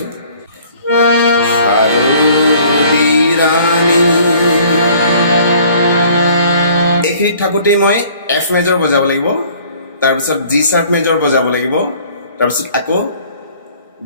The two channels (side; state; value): both; inverted; correlation -0.55